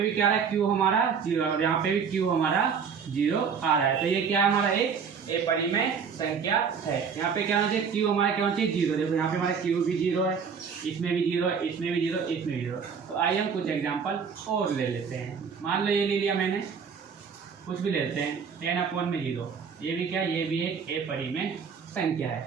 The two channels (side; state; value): left; quieter; 6.3 dB